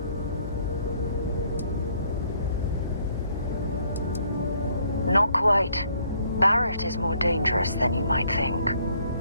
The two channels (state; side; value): inverted; both; correlation -0.66